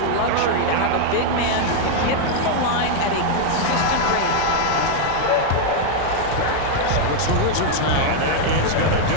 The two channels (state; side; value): different; both; correlation 0.00